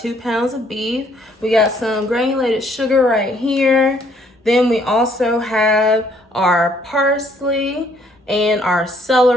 pounds of beef. We got some granulated sugar right here. Then we also have our parsley and our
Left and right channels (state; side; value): normal; both; correlation 0.65